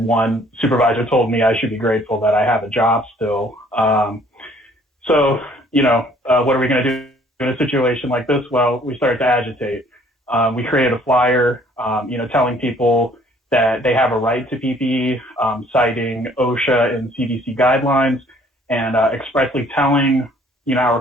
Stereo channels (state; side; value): normal; both; correlation 0.59